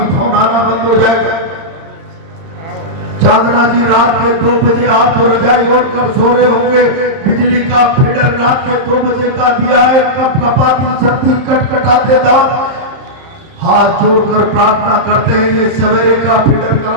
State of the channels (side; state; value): left; late; 30 ms